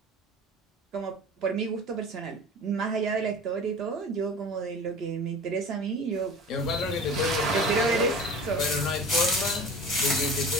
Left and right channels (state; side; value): normal; both; correlation 0.39